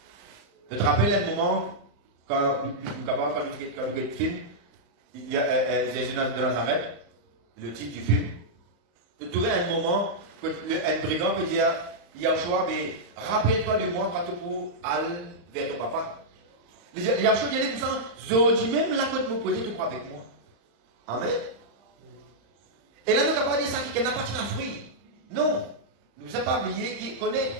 Je te rappelle un moment quand nous avons le film, il y a Jésus de Nazareth, le titre du film. Je trouvais un moment que un brigand peut dire Yahushua, mais rappelle-toi de moi quand tu peux aller vers ton papa. Yahushua dit comme ça, je dis même la côte me poser, tu crois avec moi. Amen. Et là, nous n'avons pas dit ça qui n'a pas de fruit. Non. Nous ne sommes pas oublié qui connaît,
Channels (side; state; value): left; late; 35 ms